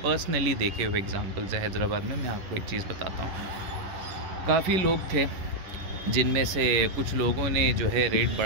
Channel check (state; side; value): late; left; 11 ms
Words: पर्सनली देखे हुए एग्ज़ाम्पल्स है हैदराबाद में। मैं आपको एक चीज़ बताता हूँ। काफ़ी लोग थे जिनमें से कुछ लोगों ने जो है रेट